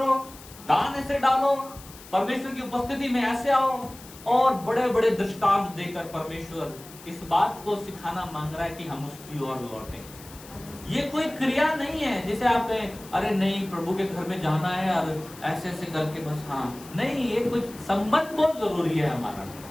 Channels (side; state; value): left; noise; hiss, 19 dB below the sound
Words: दान ऐसे डालो, परमेश्वर की उपस्थिति में ऐसे आओ, और बड़े बड़े दृष्टांत देकर परमेश्वर इस बात को सिखाना मांग रहा है कि हम उसकी ओर लौटें। ये कोई क्रिया नहीं है जिसे आप कहें अरे नहीं प्रभु के घर में जाना है और ऐसे ऐसे करके बस, हाँ नहीं, ये कुछ संबंध बहुत जरूरी है हमारा।